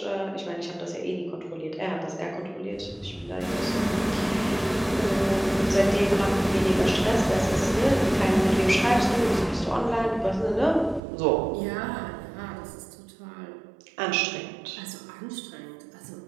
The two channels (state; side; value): drops out; left; at 11.0 s